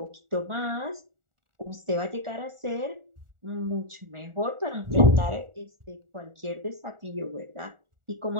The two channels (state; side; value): late; left; 1.4 ms